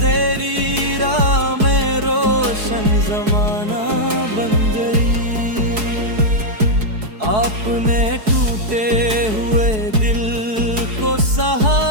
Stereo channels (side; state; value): left; late; 4.7 ms